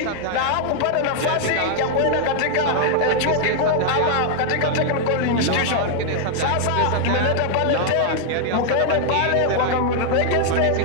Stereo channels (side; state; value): both; different; correlation 0.00